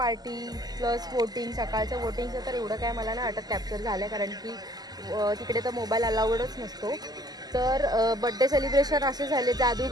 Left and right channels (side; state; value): left; late; 0.19 ms